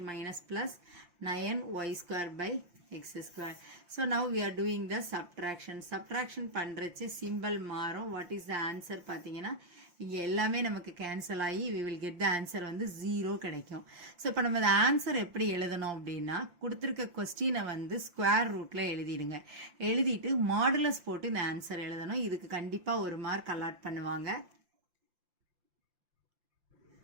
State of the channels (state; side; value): late; left; 5.7 ms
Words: minus plus 9y square by x square. So now we are doing the subtraction. Subtraction பண்றச்சு symbol மாறும். What is the answer பார்த்தீங்கன்னா இங்க எல்லாமே நமக்கு cancel ஆகி we will get the answer வந்து 0 கிடைக்கும். So இப்போ நம்ம இந்த ஆன்சர் எப்படி எழுதணும் அப்படின்னா கொடுத்துருக்க கொஸ்டினை வந்து ஸ்கொயர் ரூட்ல எழுதிடுங்க. எழுதிட்டு மாடுலஸ் போட்டு இந்த ஆன்சர் எழுதணும். இதுக்கு கண்டிப்பாக ஒரு மார்க் அலாட் பண்ணுவாங்க.